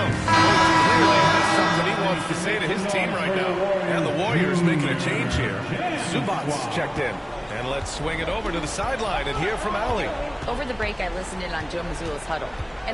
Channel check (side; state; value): both; identical; correlation 1.00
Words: Clearly has something he wants to say to his team right now. And the Warriors making a change here. Zubats checked in. And let's swing it over to the sideline and hear from Allie. Over the break, I listened in on Joe Mazzulla's huddle,